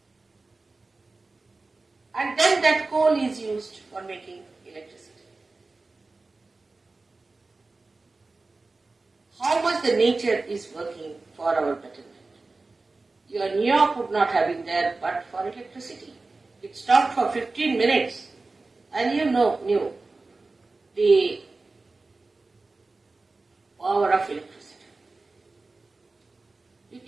And then that coal is used for making electricity. How much the nature is working for our betterment. Your New York would not have been there but for electricity. It stopped for 15 minutes and you knew the power of electricity. You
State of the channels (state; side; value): quieter; left; 3.5 dB